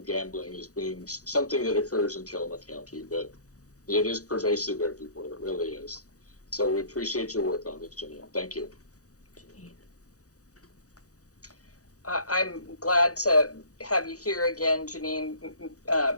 gambling as being something that occurs in Tillamook County, but it is pervasive everywhere. It really is. So we appreciate your work on this, Janine. Thank you. I'm glad to have you here again, Janine,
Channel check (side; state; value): right; late; 0.66 ms